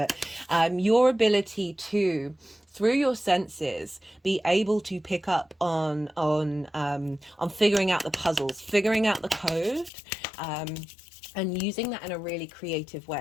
your ability to, through your senses, be able to pick up on figuring out the puzzles, figuring out the code, and using that in a really creative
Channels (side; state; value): right; drops out; at 9.9 s